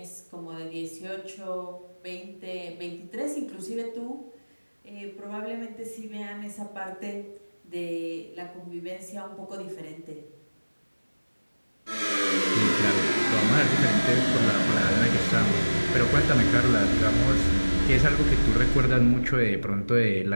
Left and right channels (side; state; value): both; inverted; correlation -1.00